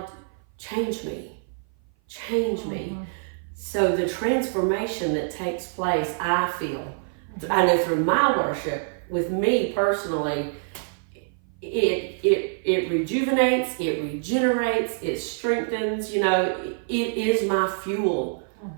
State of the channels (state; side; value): silent; left; 56 dB below the other